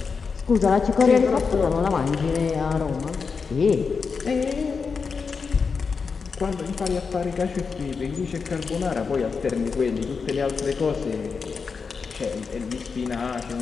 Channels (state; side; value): quieter; right; 5.3 dB